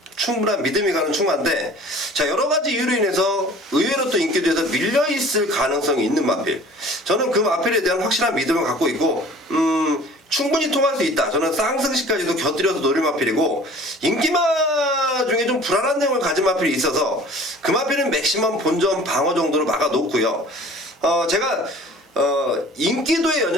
충분한 믿음이 가는 충마인데, 자, 여러 가지 이유로 인해서 의외로 또 인기도에서 밀려있을 가능성이 있는 마필. 저는 그 마필에 대한 확실한 믿음을 갖고 있고, 충분히 통할 수 있다. 저는 쌍승시까지도 곁들여서 노릴 마필이고, 인기마 중에 좀 불안한 내용을 가진 마필이 있어서 그 마필은 맥시멈 본전 방어 정도로 막아놓고요. 제가 인기도에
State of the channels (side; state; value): both; normal; correlation 0.47